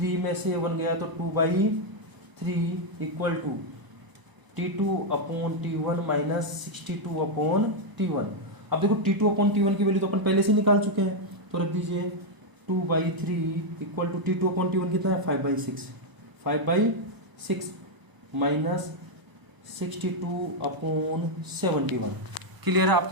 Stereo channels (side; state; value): left; late; 1.0 ms